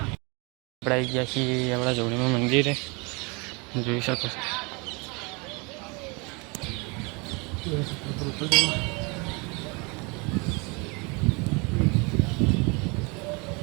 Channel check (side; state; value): left; quieter; 29.5 dB